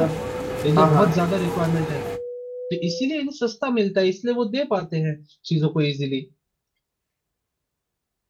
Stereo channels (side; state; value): both; identical; correlation 1.00